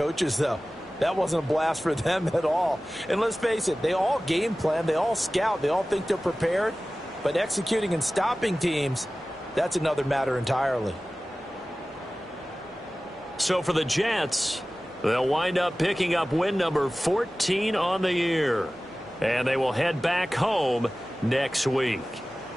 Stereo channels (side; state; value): both; normal; correlation 0.97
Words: though? That wasn't a blast for them at all. And let's face it, they all game plan, they all scout, they all think they're prepared, but executing and stopping teams, that's another matter entirely. So for the Jets, they'll wind up picking up win number 14 on the year. And they will head back home next week.